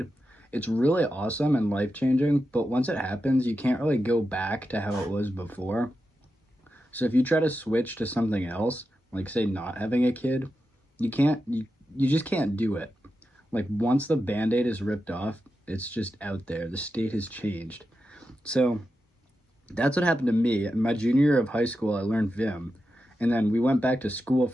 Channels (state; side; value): normal; both; correlation 0.89